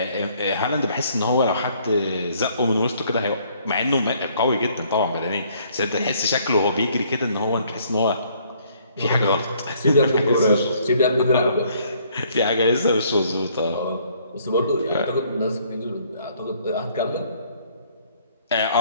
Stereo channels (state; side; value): inverted; both; correlation -0.63